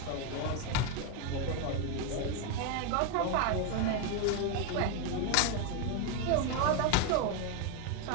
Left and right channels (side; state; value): both; different; correlation 0.02